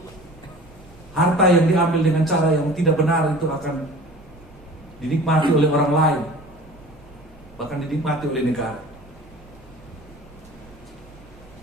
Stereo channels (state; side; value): normal; both; correlation 0.42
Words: harta yang diambil dengan cara yang tidak benar itu akan dinikmati oleh orang lain, bahkan dinikmati oleh negara.